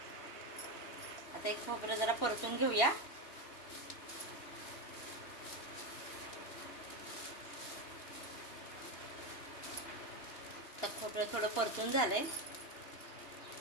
आता एक खोबरं जरा परतून घेऊया। खोबरं थोडं परतून झालंय,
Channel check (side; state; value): right; late; 2.8 ms